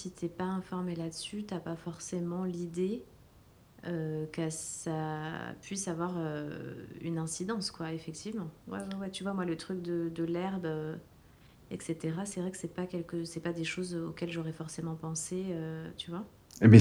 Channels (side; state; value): both; identical; correlation 1.00